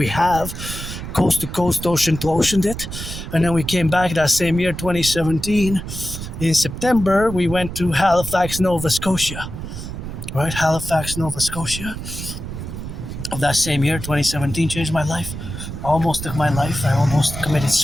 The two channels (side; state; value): right; noise; rumble, 8 dB below the sound